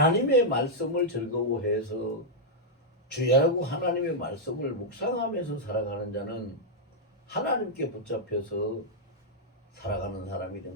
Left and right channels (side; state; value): both; normal; correlation -0.05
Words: 말씀을 즐거워해서 주야라고 하나님의 말씀을 묵상하면서 살아가는 자는 하나님께 붙잡혀서 살아가는 사람이